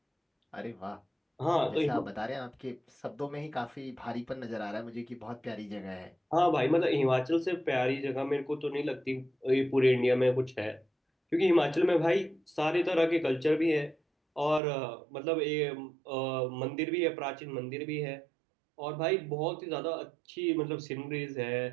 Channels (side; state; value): left; drops out; at 14.6 s